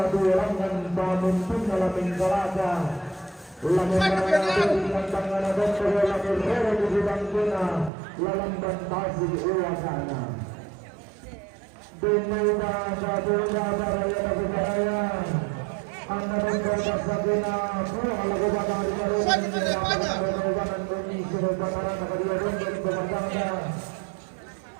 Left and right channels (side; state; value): left; drops out; at 7.9 s